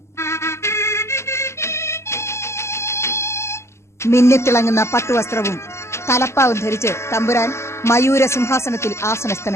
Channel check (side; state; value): right; late; 0.13 ms